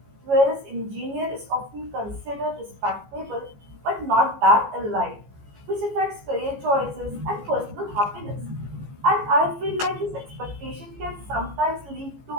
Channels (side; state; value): left; late; 15 ms